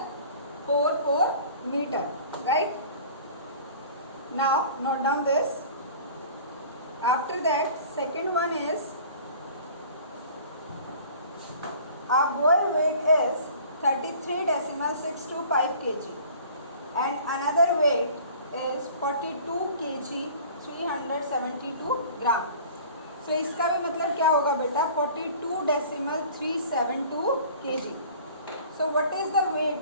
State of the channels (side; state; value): both; inverted; correlation -0.46